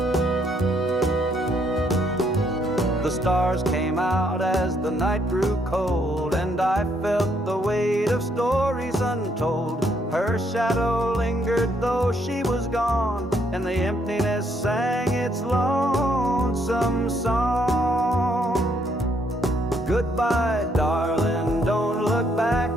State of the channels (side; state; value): both; normal; correlation 0.71